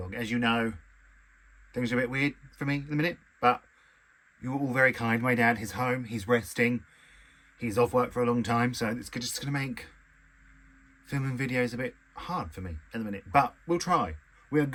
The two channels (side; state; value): both; identical; correlation 1.00